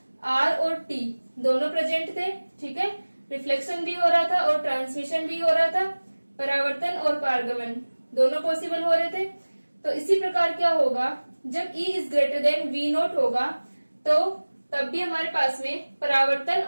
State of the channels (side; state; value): both; inverted; correlation -1.00